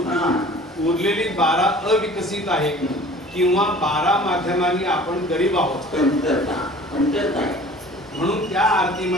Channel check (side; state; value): both; normal; correlation 0.46